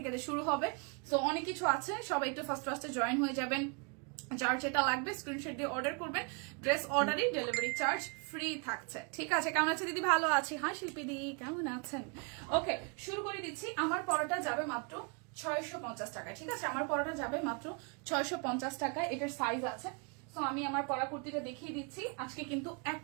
শুরু হবে। সো অনেক কিছু আছে, সবাই একটু ফার্স্টে জয়েন হয়ে যাবেন। যার যেটা লাগবে স্ক্রিনশট দিয়ে অর্ডার করবেন। ড্রেস অর্ডারই ডেলিভারি চার্জ ফ্রি থাকছে। ঠিক আছে, কেমন আছে দিদি? ভালো আছি। হ্যাঁ শিল্পী দি, কেমন আছেন? ওকে, শুরু করে দিচ্ছি। আমার পড়াটা যাবে মাত্র 650 টাকা। ঠিক আছে, আমার পড়াটা যাবে মাত্র 650 টাকায়। এটার সাইজ আছে। সো আমি আমার পরা কুর্তিটা দেখিয়ে দিচ্ছি। আজকে কিন্তু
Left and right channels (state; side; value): quieter; left; 34.5 dB